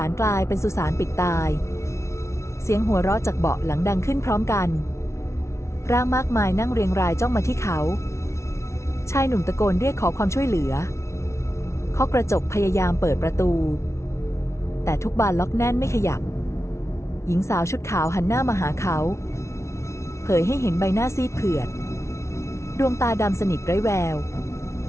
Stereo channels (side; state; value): right; late; 0.13 ms